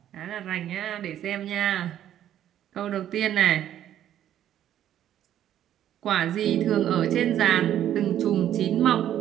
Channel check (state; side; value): quieter; left; 11.2 dB